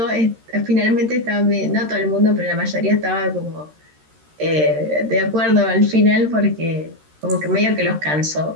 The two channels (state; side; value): late; left; 13 ms